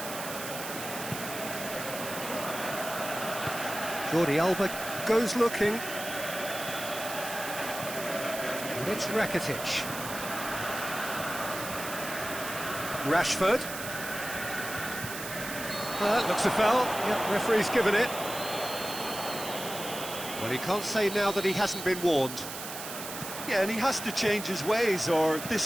Jordi Alba goes looking. And it's Rakitic. Rashford. Looks a foul. Yep, referee's given it. Well, he can't say now that he hasn't been warned. Yeah, and he has to change his ways, or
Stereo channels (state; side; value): noise; right; hiss, 8 dB below the sound